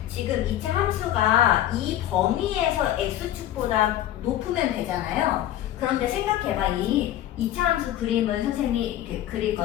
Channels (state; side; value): quieter; right; 12.7 dB